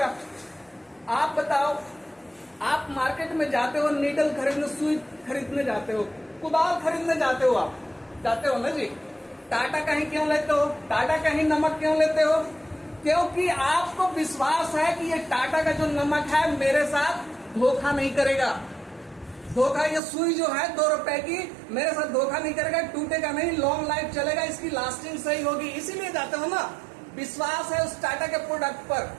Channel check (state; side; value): drops out; left; at 20.0 s